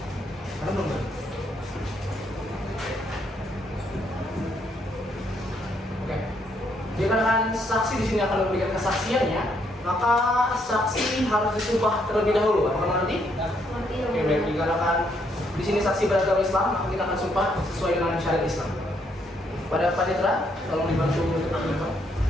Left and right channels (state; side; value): normal; both; correlation 0.73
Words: Karena belum ada. Oke. Dikarenakan saksi di sini akan memberikan kesaksiannya, maka saksi harus disumpah terlebih dahulu. Apakah nanti? Nanti Yang Oke, Mulia. baik. Dikarenakan di sini saksi beragama Islam, maka kita akan sumpah sesuai dengan syariat Islam. Pada panitera, tolong dibantu untuk menyumpah.